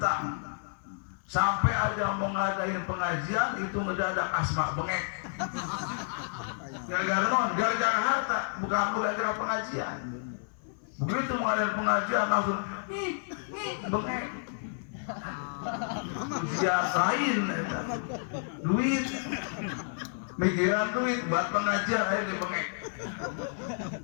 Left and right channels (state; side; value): silent; right; 58 dB below the other